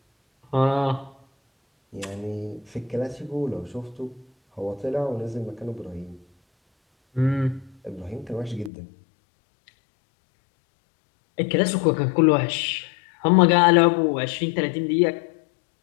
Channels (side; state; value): right; drops out; at 8.7 s